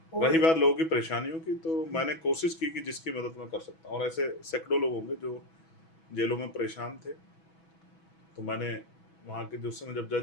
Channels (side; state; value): right; late; 6.1 ms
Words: और रही बात लोगों की परेशानियों की, तो हुँ, मैंने कोशिश की कि जिसकी मदद मैं कर सकता हूँ, और ऐसे सैकड़ों लोग होंगे जो जेलों में परेशान थे, तो मैंने वहाँ के जो उस समय जब